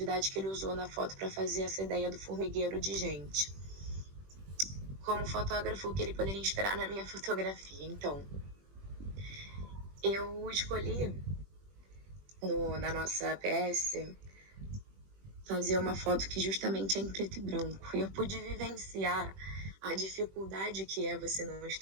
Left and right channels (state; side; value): late; left; 21 ms